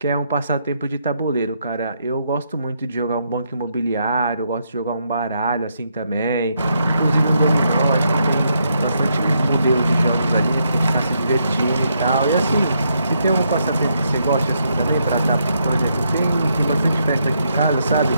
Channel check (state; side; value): inverted; both; correlation -0.77